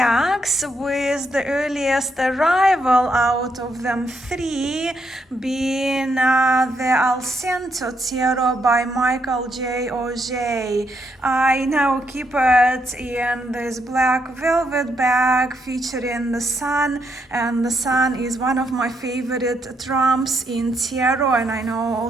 with the earliest arrival out of them 3 being the Alcento Tarot by Michael J. Auger. I now keep it in this black velvet bag featuring the sun, and the sun is one of my favorite trumps in tarot, and I know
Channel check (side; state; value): both; normal; correlation 0.77